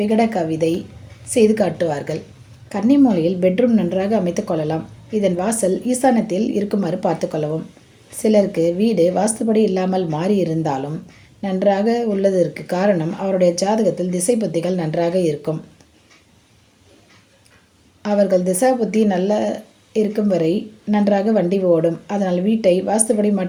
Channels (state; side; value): identical; both; correlation 1.00